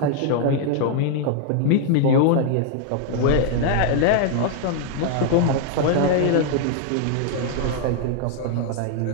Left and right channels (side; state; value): both; different; correlation 0.00